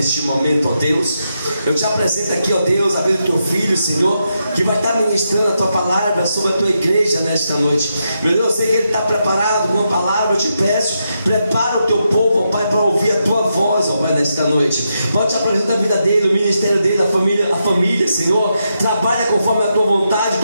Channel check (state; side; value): inverted; both; correlation -0.84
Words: momento, ó Deus, eu te apresento aqui, ó Deus, a vida do teu filho, Senhor, que vai estar ministrando a tua palavra sobre a tua igreja nesta noite. Meu Deus, eu sei que ele está preparado com uma palavra. Eu te peço, prepara o teu povo, ó Pai, para ouvir a tua voz, ó Pai, nesta noite. Pode te apresentar a vida dele, o ministério dele, a família, Senhor. Trabalha conforme a tua vontade,